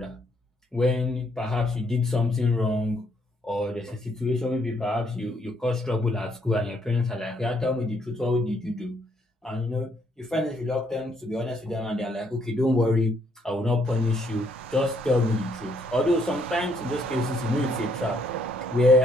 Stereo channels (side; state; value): both; normal; correlation 0.70